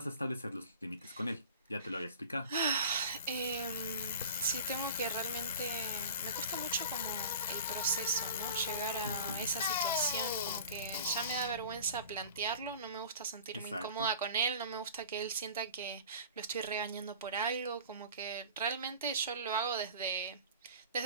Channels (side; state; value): both; inverted; correlation -0.39